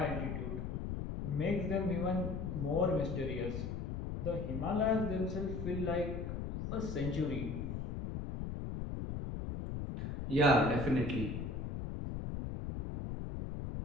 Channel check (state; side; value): noise; left; rumble, 4 dB below the sound